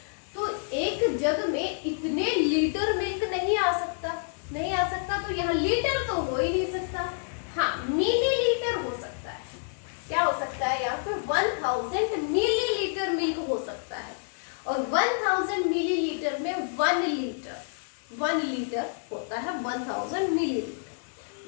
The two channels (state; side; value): silent; right; digital silence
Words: तो एक जग में इतने लीटर मिल्क नहीं आ सकता, नहीं आ सकता, तो यहाँ लीटर तो हो ही नहीं सकता। हाँ, मिलीलीटर हो सकता है। क्या हो सकता है यहाँ पे, 1000 मिलीलीटर मिल्क हो सकता है। और 1000 मिलीलीटर में 1 लीटर, 1 लीटर होता है 1000 मिलीलीटर।